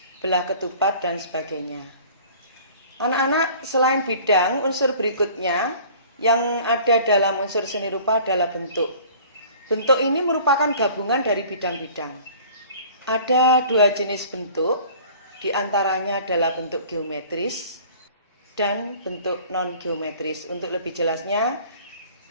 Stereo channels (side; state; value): both; inverted; correlation -0.48